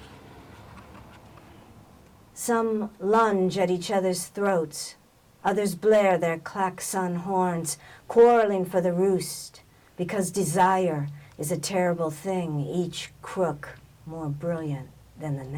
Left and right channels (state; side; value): identical; both; correlation 1.00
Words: Some lunge at each other's throats. Others blare their klaxon horns, quarreling for the roost, because desire is a terrible thing, each crook more brilliant than the